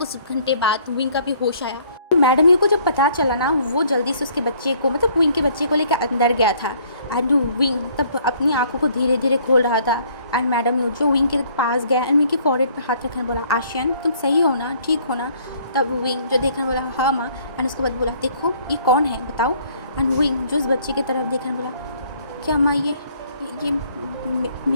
घंटे बाद विंग का भी होश आया। मैडम यू को जब पता चला ना, वो जल्दी से उसके बच्चे को मतलब विंग के बच्चे को लेकर अंदर गया था, एंड विंग तब अपनी आंखों को धीरे धीरे खोल रहा था। एंड मैडम यू जो विंग के पास गया, एंड विंग के फॉरहेड पे हाथ रखने बोला, आशियन तुम सही हो ना, ठीक हो ना? तब विंग जो देखने बोला, हाँ माँ। एंड उसके बाद बोला, देखो ये कौन है बताओ? एंड विंग जो उस बच्चे की तरफ देखने बोला, क्या माँ ये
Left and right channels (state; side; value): inverted; both; correlation -0.60